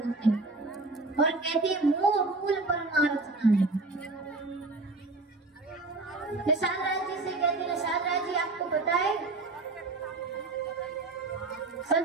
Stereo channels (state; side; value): quieter; left; 3.3 dB